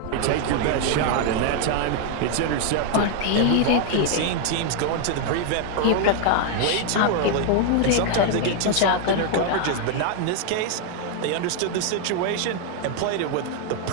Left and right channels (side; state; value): both; different; correlation 0.00